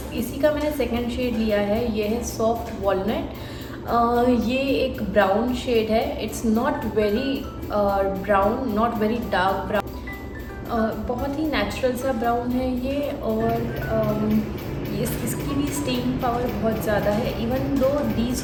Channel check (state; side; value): identical; both; correlation 1.00